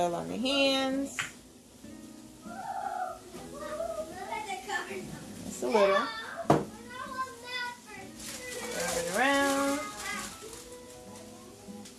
on the hands. Just a little. Wrap it around.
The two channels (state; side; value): identical; both; correlation 1.00